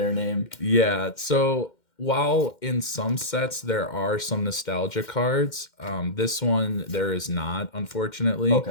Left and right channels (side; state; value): right; late; 2.1 ms